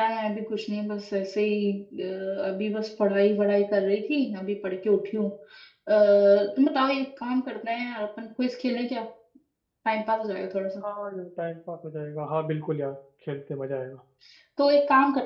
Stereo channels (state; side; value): identical; both; correlation 1.00